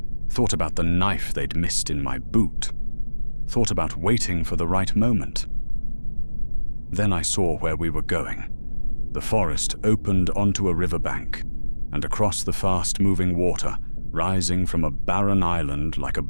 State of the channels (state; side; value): inverted; both; correlation -1.00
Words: thought about the knife they'd missed in my boot, thought about waiting for the right moment. Then I saw where we were going. The forest opened onto a riverbank, and across the fast-moving water, rising from a barren island like a